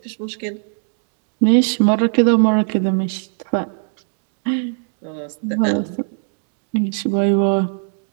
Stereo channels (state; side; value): silent; left; 66 dB below the other